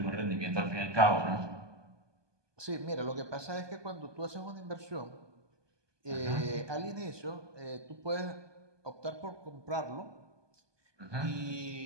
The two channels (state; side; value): late; left; 1.2 ms